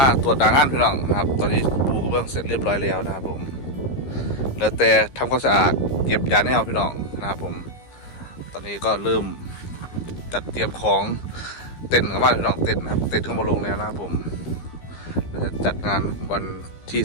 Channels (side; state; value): right; late; 15 ms